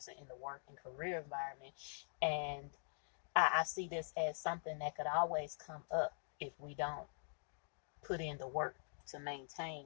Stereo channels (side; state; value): right; silent; digital silence